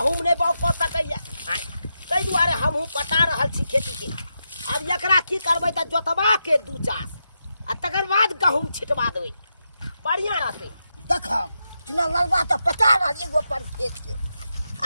नहीं बाउग कर सकैया ताहि दुआरे हमहूँ पटा रहल छी खेती के अब एकरा की करबै त जोतबा के दू चास आ तकर बाद गहूम छिटवा देबै बढ़िया रहतै देख चुना ललबा त पटा रहल एगो पर खेत के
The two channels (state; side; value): inverted; both; correlation -0.86